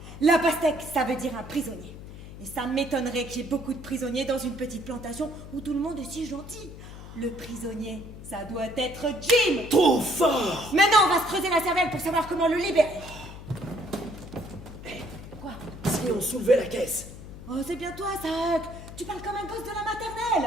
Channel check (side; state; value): left; noise; hum, 14 dB below the sound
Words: La pastèque, ça veut dire un prisonnier. Et ça m'étonnerait qu'il y ait beaucoup de prisonniers dans une petite plantation où tout le monde est si gentil. Le prisonnier, ça doit être Jim. Trop fort! Maintenant, on va se creuser la cervelle pour savoir comment le libérer. Quoi? Si on soulevait la caisse. Oh, c'est bien toi, ça, Huck. Tu parles comme un gosse de la